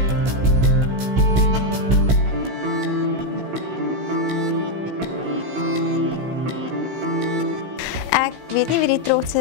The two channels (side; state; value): left; late; 16 ms